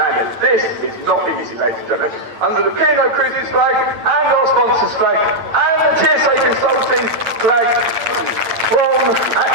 This is not easy, ladies and gentlemen. Under the P&O Cruises flag, and our sponsors flag, and the TSA Consulting flag from,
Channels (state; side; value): late; left; 9.0 ms